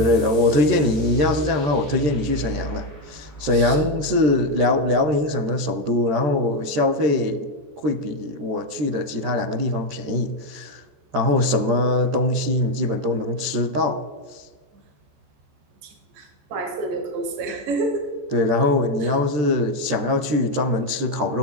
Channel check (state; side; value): late; left; 13 ms